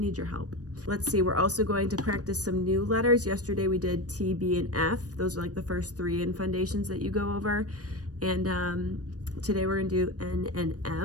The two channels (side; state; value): left; late; 0.68 ms